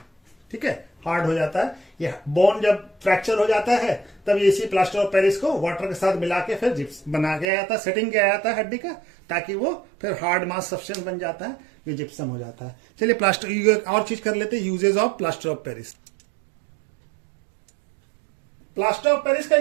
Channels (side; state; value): left; drops out; at 7.5 s